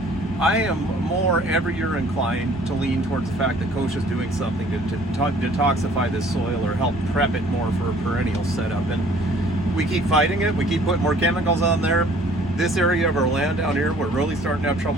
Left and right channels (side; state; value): both; normal; correlation 0.55